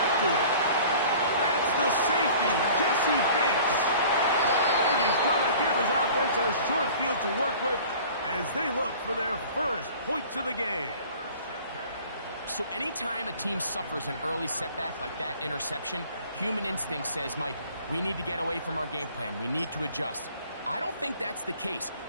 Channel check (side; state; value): both; inverted; correlation -0.47